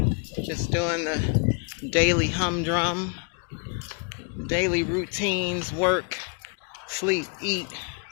just doing the daily humdrum, daily routines, work, sleep, eat,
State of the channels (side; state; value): right; quieter; 36.8 dB